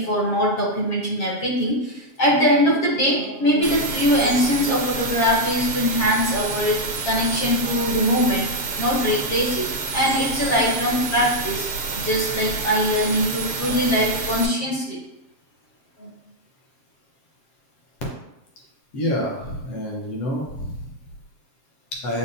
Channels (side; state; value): right; late; 7.4 ms